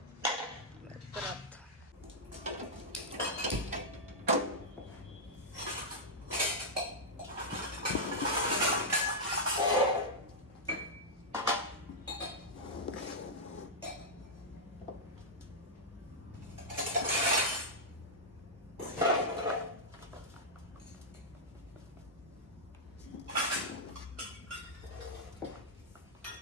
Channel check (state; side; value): normal; both; correlation -0.06